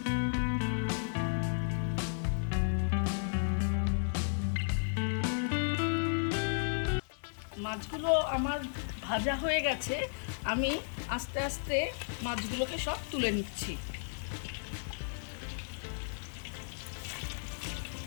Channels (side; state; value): right; silent; digital silence